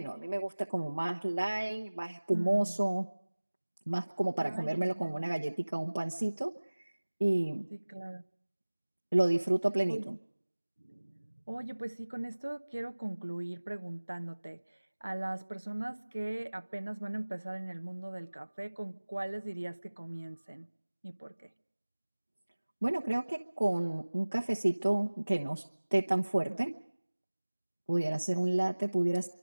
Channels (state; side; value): inverted; both; correlation -1.00